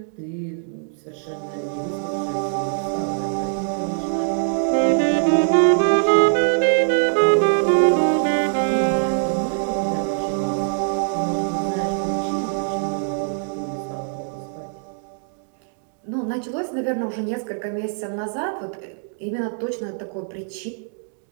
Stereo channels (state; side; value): silent; left; digital silence